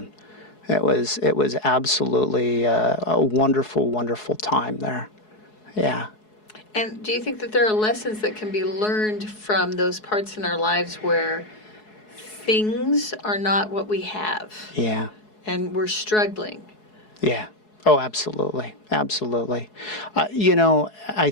It was absolutely a wonderful, wonderful time there. Yeah. And do you think that there are lessons that can be learned from those parts in our lives where things are not what we have? Yeah. And we're struggling. Yeah. Oh, absolutely. Absolutely. I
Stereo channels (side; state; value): right; late; 4.7 ms